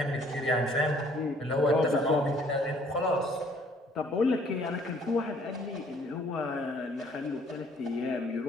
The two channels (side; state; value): both; normal; correlation 0.60